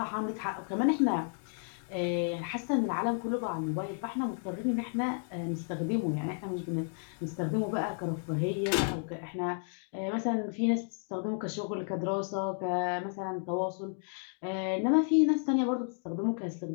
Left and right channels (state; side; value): silent; right; 56 dB below the other